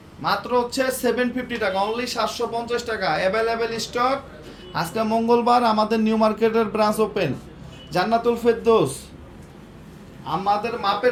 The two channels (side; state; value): both; identical; correlation 1.00